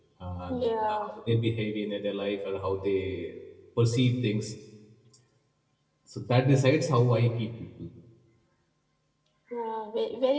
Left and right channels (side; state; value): both; identical; correlation 1.00